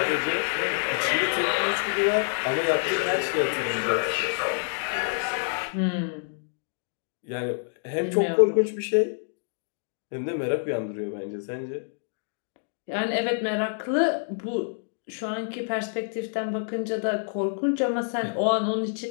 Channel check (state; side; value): silent; right; digital silence